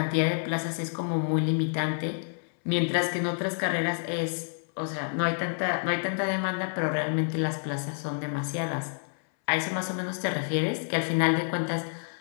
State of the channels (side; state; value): right; silent; 59 dB below the other